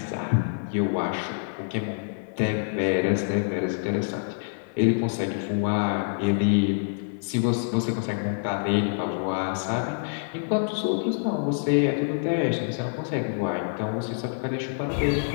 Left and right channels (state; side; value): silent; right; 61 dB below the other